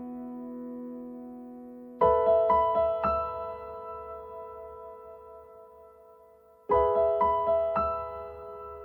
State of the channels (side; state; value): both; identical; correlation 1.00